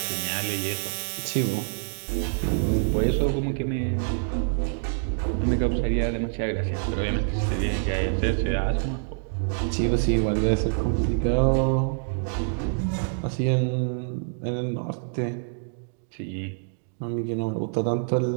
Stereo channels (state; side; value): silent; left; digital silence